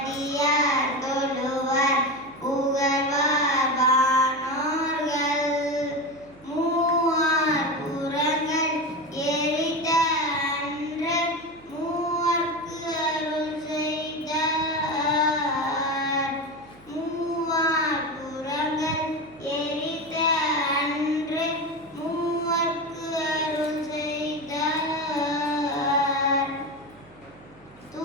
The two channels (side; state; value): right; noise; hum, 26 dB below the sound